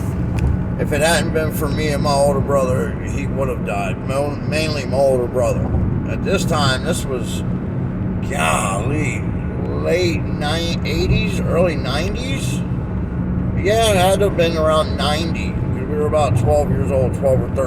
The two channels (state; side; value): identical; both; correlation 1.00